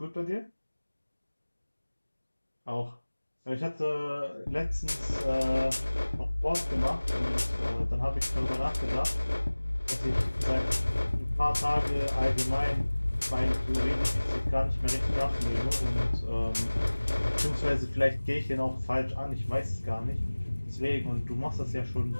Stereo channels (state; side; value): inverted; both; correlation -1.00